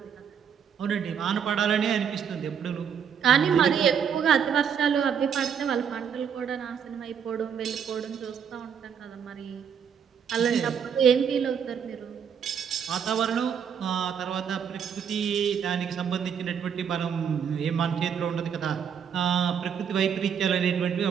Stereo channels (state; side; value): quieter; left; 7.6 dB